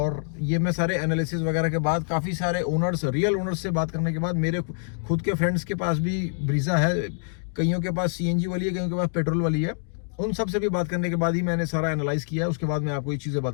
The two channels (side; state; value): right; silent; digital silence